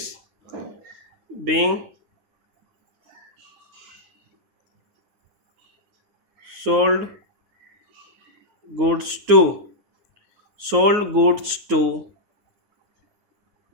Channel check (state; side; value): late; left; 9.5 ms